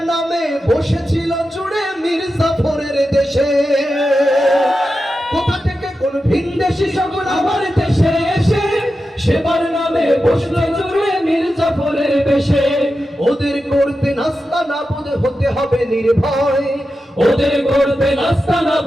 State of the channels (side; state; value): both; normal; correlation 0.91